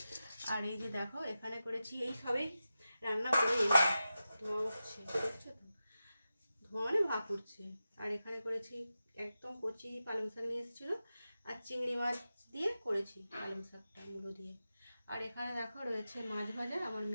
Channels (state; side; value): inverted; both; correlation -0.92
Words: আর এই যে দেখো এখানে করেছি, এই সবেই রান্না করে এলাম, ধোঁয়া উঠছে, দেখছো তো, ধোঁয়া মানে ভাপ উঠছে। আর এখানে করেছি একদম কচি পালং শাক নিয়ে এসেছিলো, আর চিংড়ি মাছ দিয়ে করেছি পালং শাকটা মুলো দিয়ে। আর এখানে দেখো রয়েছে মাছ ভাজা, আমার